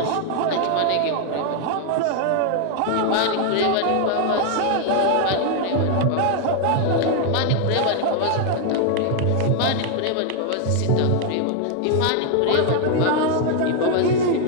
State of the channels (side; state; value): both; different; correlation 0.00